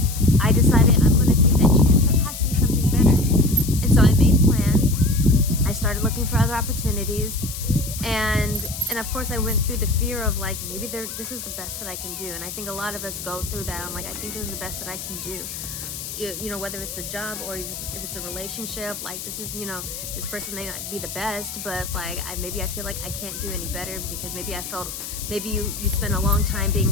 I decided I'm going to take that chance. There has to be something better. And so I made plans. I started looking for other opportunities, and of course I went through the fear of like, maybe this is the best that I can do. And I think a lot of us go through that. I'm like, I think this is the best that I can do. You know, whether it's a job or if it's a relationship, like this is, you know, this person may not be the best, but like maybe I feel like I can't do any better because maybe I felt, maybe you spent a long time being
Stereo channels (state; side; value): noise; left; hiss, 8 dB below the sound